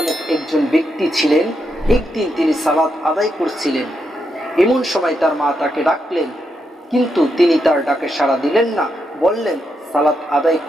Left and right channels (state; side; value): normal; both; correlation 0.82